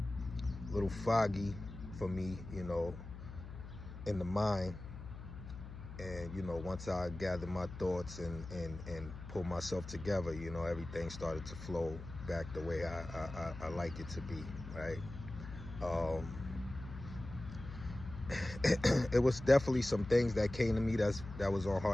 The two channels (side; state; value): left; noise; hum, 12 dB below the sound